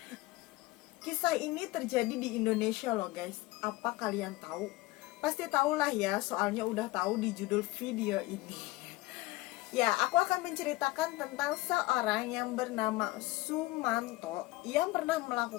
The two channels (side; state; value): right; quieter; 19.5 dB